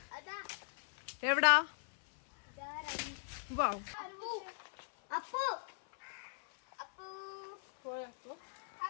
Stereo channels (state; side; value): silent; right; 52 dB below the other